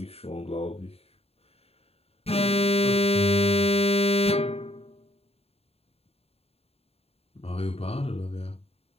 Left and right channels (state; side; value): late; right; 0.29 ms